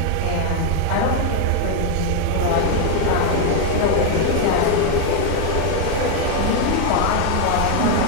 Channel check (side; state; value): both; different; correlation 0.01